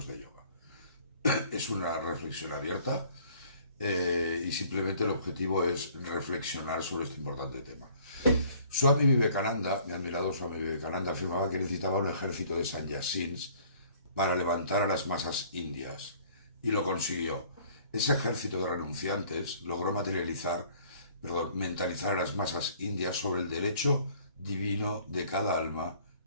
de yoga. Es una reflexión abierta y simplemente el objetivo es reflexionar sobre este importante tema. Swami Vivekananda, mi admirado Swami Vivekananda, afirmaba que necesitaba un ejército de sannyasins para levantar a las masas indias, y lo consiguió. Ese ejército de renunciantes logró mentalizar a las masas indias sobre el derecho divino de cada alma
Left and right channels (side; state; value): both; inverted; correlation -0.56